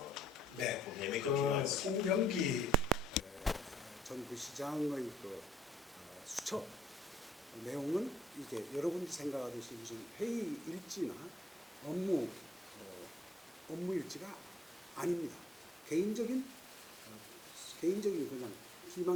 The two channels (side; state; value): both; normal; correlation 0.67